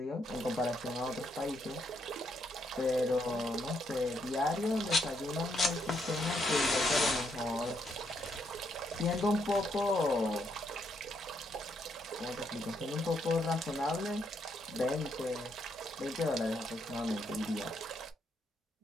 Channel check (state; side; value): normal; both; correlation 0.76